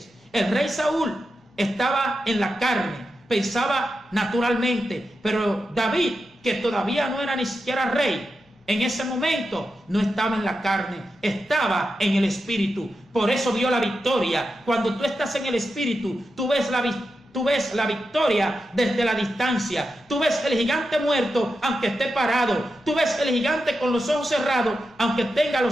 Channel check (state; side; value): normal; both; correlation 0.89